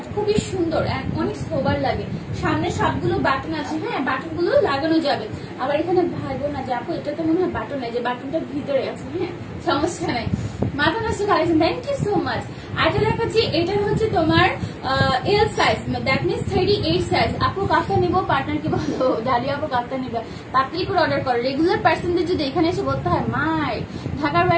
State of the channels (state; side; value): identical; both; correlation 1.00